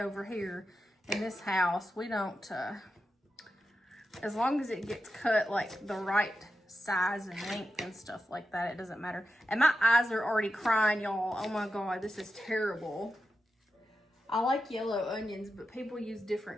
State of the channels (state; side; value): normal; both; correlation 0.90